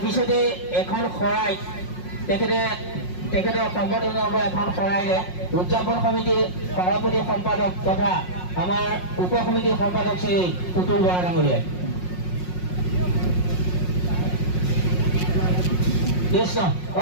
পিছতে এখন শৰাই তেখেতৰ সম্পাদনৰ এখন শৰাইৰে উদযাপন সমিতিৰ সভাপতি সম্পাদক তথা আমাৰ উপ সমিতিৰ সম্পাদক শ্ৰী পুতুল বৰা ডাঙৰীয়াই। কৃষ্ণ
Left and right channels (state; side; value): late; right; 5.5 ms